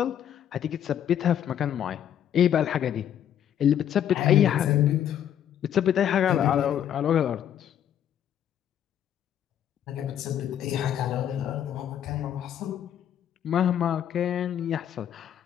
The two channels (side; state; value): right; quieter; 10.0 dB